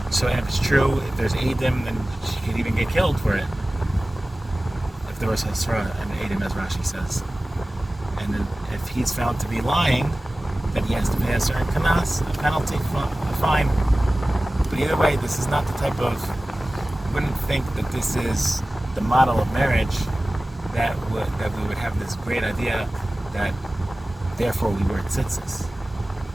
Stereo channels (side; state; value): both; normal; correlation 0.97